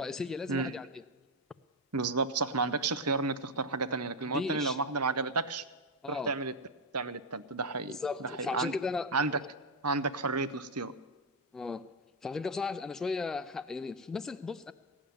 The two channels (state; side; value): normal; both; correlation 0.03